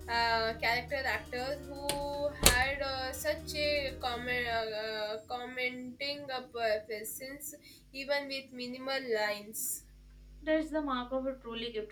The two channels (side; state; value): both; identical; correlation 1.00